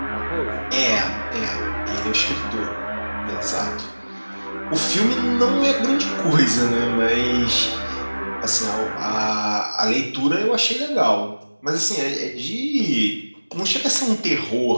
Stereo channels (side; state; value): both; inverted; correlation -1.00